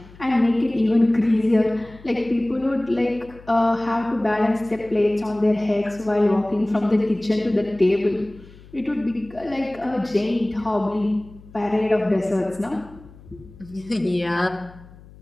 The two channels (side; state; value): left; noise; hum, 22 dB below the sound